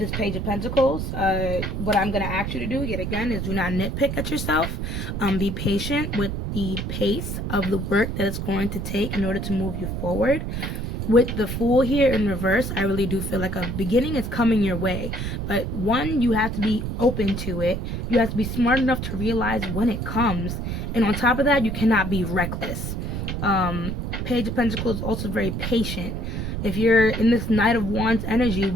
Page of Pentacles. What I'm going to ask you to do, yet again, is do not nitpick at yourself. Be patient with the pace of the work that it's going to take in order to move you forward. With the Fool here in reverse, I really do feel like a beginning is coming your way. But one, you have to be open to it. You have to be smart enough to realize when it comes. And on top of that, you cannot be reckless. Page of Pentacles is also very patient. If you're in this Knight of Wands energy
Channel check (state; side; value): noise; right; rumble, 3 dB below the sound